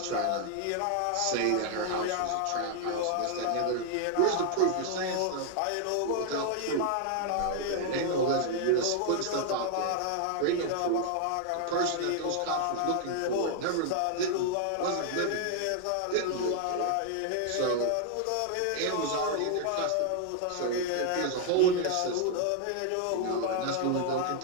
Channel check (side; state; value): both; different; correlation 0.00